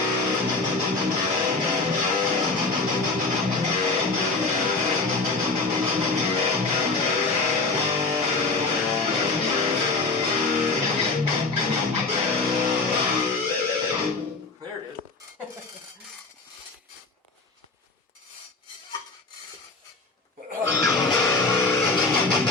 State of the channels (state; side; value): quieter; right; 3.7 dB